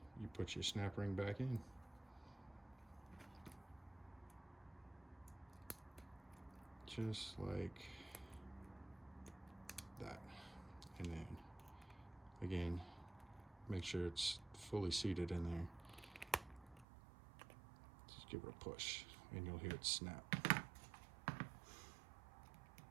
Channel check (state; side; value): drops out; left; at 16.9 s